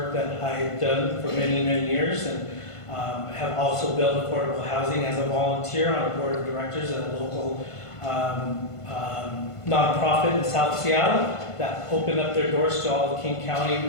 that I've done for many, many years, and have also built affordable housing as a volunteer on a board of directors at a local nonprofit in South Seattle that opened up their doors to all the King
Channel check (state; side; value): late; right; 1.5 ms